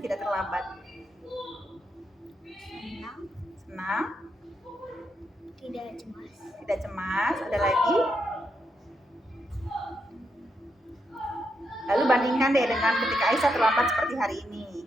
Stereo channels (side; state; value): both; normal; correlation 0.81